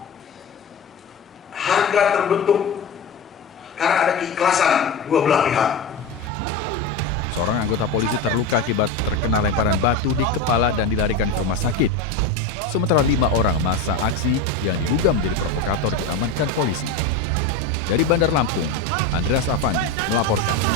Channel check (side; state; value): right; quieter; 3.0 dB